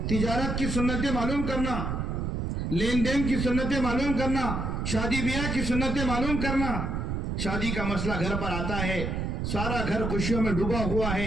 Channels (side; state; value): right; noise; rumble, 2 dB below the sound